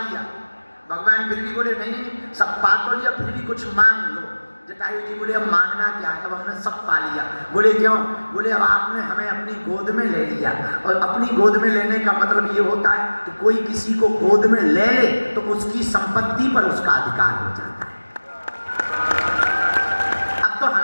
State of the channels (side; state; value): both; inverted; correlation -1.00